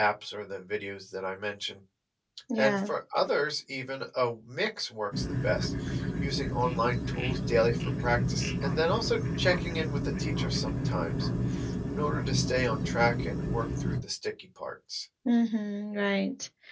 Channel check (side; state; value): both; identical; correlation 1.00